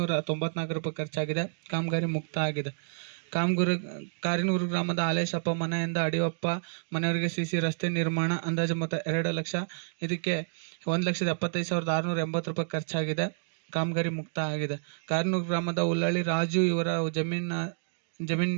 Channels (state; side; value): silent; left; digital silence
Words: ಖರ್ಚಾಗಿದೆ. ಕಾಮಗಾರಿ ಮುಕ್ತ ಆಗಿದೆ. ಕಾರ್ನೂರು ಗ್ರಾಮದ ಹಾಲೇಶಪ್ಪ ಮನೆಯಿಂದ ಅಡಿಯಪ್ಪ ಮನೆಯವರೆಗೆ ಸಿಸಿ ರಸ್ತೆ ನಿರ್ಮಾಣ ಅಂದಾಜು ಮೊತ್ತ 2 ಲಕ್ಷ, ಇದಕ್ಕೆ 1,75,680 ಖರ್ಚಾಗಿದೆ. ಕಾಮಗಾರಿ ಮುಕ್ತ ಆಗಿದೆ. ಕಾರ್ನೂರು ಗ್ರಾಮದ ಉಳ್ಳಳ್ಳಿ ರಾಜು ಇವರ